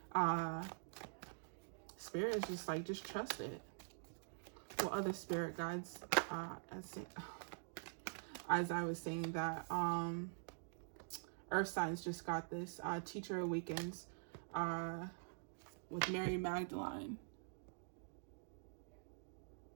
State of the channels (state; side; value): silent; left; digital silence